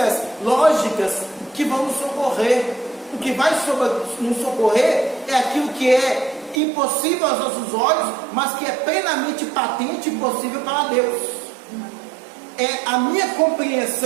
lógicas que vão nos socorrer. O que vai nos socorrer é aquilo que é impossível aos nossos olhos, mas que é plenamente patente e possível para Deus. É a minha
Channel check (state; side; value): drops out; left; at 6.6 s